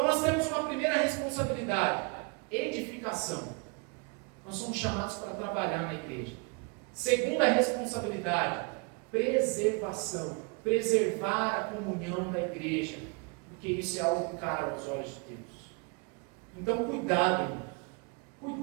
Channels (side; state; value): left; quieter; 31.3 dB